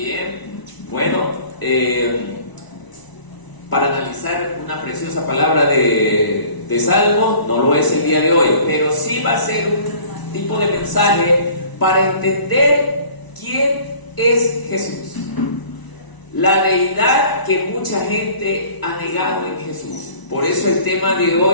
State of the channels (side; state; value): right; late; 1.0 ms